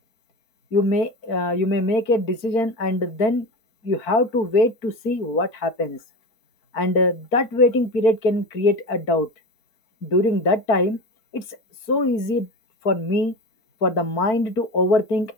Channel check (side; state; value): right; late; 4.5 ms